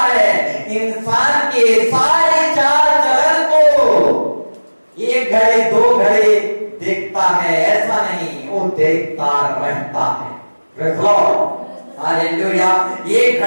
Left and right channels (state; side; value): inverted; both; correlation -1.00